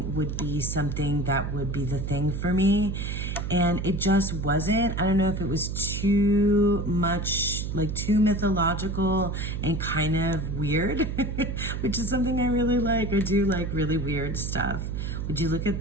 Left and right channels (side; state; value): right; noise; hum, 3 dB below the sound